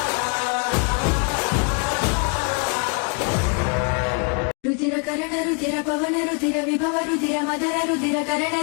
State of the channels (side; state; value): right; quieter; 38.1 dB